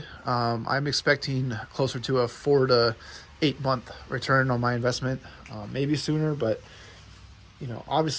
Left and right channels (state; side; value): identical; both; correlation 1.00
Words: I'm expecting closer to a 4 to 8 month return on my investment, maybe sooner, but